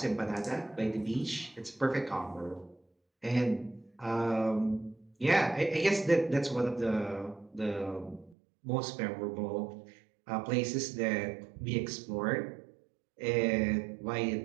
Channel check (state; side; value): drops out; left; at 8.3 s